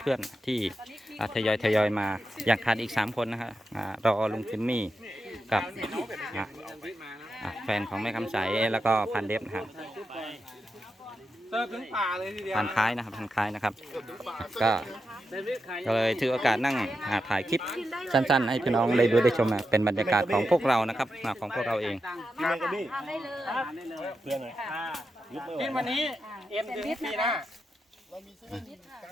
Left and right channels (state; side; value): normal; both; correlation 0.87